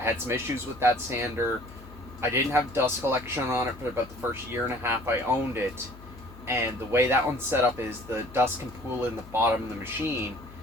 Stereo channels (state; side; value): noise; left; hum, 18 dB below the sound